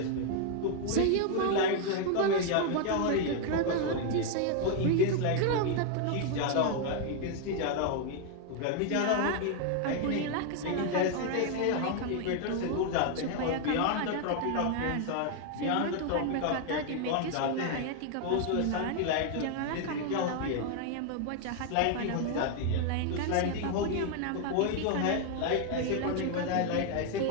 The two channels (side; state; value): both; different; correlation 0.00